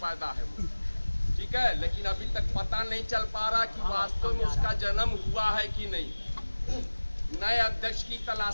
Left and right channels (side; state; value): both; inverted; correlation -1.00